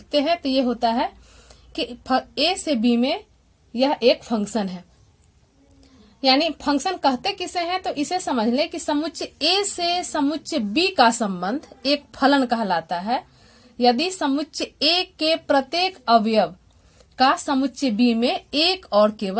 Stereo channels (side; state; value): both; identical; correlation 1.00